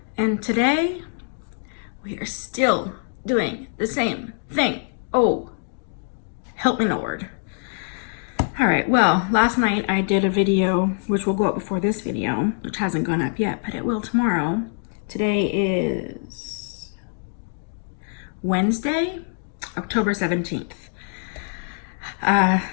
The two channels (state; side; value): silent; right; digital silence